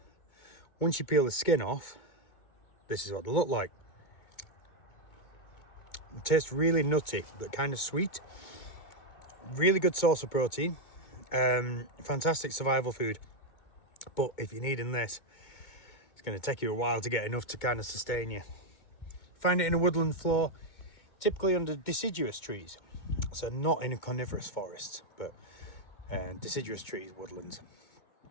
Once you peel the skin off, this is what they look like. It tastes really nutty but kind of sweet. Really good source of protein. Fantastic survival food. But if you're needing this, it's going to take you a while to get enough to kind of sustain you. Find it in a woodland floor, typically under deciduous trees. So not in a coniferous forest, but deciduous trees, woodlands.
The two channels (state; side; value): late; right; 2.2 ms